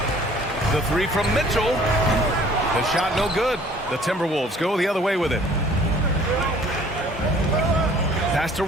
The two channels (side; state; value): both; normal; correlation 0.54